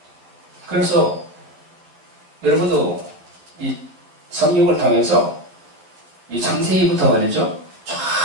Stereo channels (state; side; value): late; left; 12 ms